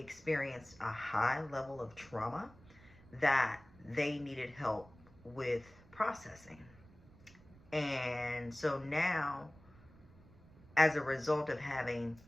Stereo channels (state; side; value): noise; right; rumble, 23 dB below the sound